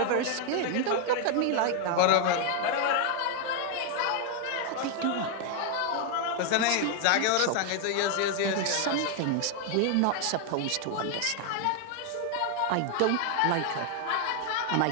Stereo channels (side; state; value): both; different; correlation 0.00